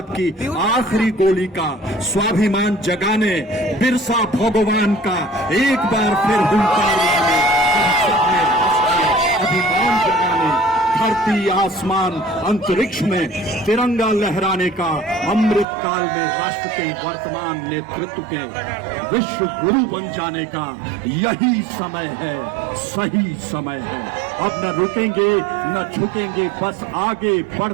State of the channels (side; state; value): left; drops out; at 15.7 s